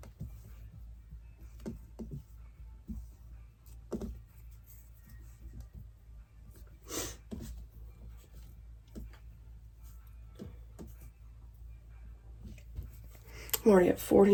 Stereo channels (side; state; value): both; identical; correlation 1.00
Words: I'm already at